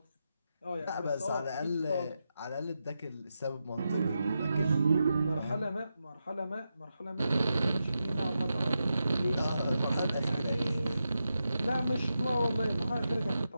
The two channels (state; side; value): inverted; both; correlation -0.88